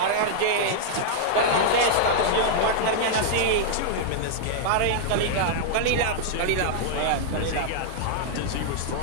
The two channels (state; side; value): different; both; correlation -0.01